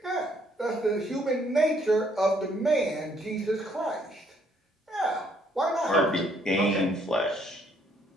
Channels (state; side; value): normal; both; correlation 0.67